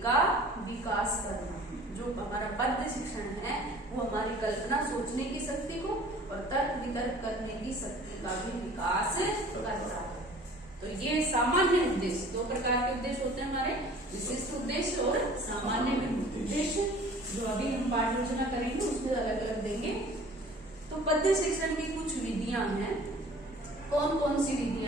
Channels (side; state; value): both; normal; correlation 0.48